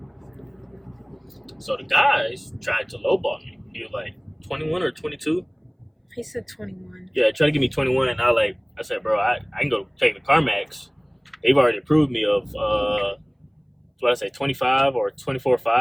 So the guys tried to lowball me. He was like 21 or 22. He said 21. Yeah, tried to give me 21, and I said, bro, I can go take the CarMax. They've already approved me of what I say, 25 or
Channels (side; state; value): both; identical; correlation 1.00